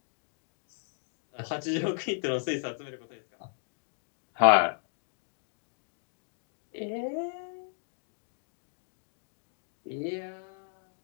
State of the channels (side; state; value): right; silent; 55 dB below the other